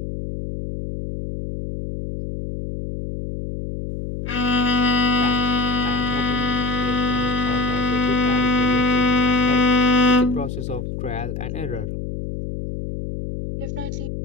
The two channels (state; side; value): noise; left; hum, 6 dB below the sound